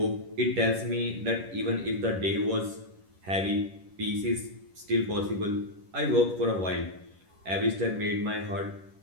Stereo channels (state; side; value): late; left; 11 ms